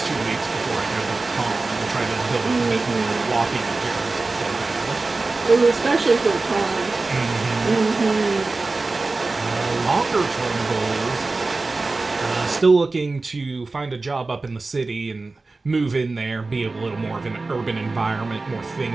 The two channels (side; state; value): left; quieter; 3.5 dB